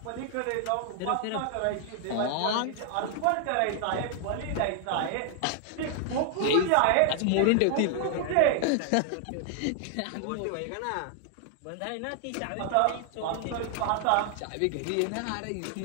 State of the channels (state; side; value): different; both; correlation 0.00